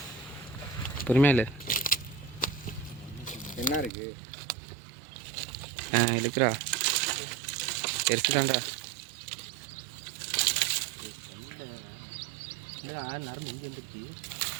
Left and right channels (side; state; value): left; drops out; at 3.9 s